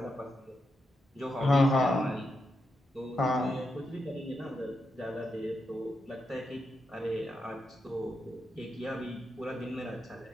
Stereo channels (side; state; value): both; normal; correlation 0.84